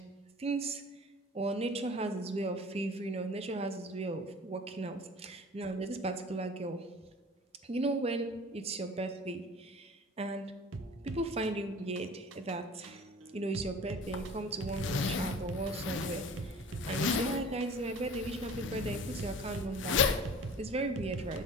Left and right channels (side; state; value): both; normal; correlation 0.43